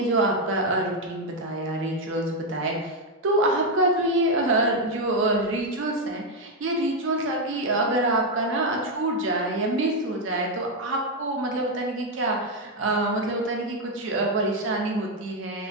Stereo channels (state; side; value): normal; both; correlation 0.04